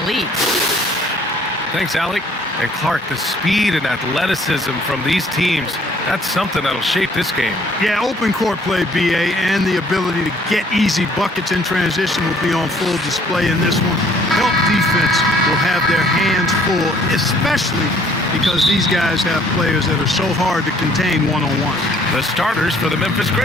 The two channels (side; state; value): both; normal; correlation 0.60